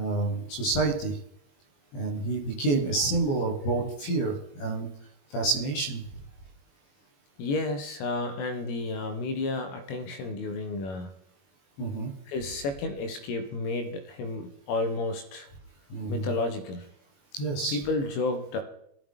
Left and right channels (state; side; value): late; right; 21 ms